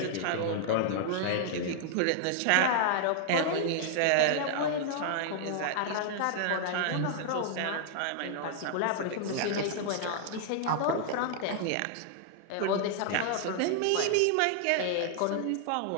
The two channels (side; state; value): both; different; correlation -0.01